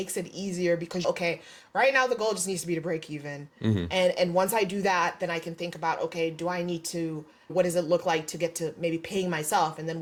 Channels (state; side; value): identical; both; correlation 1.00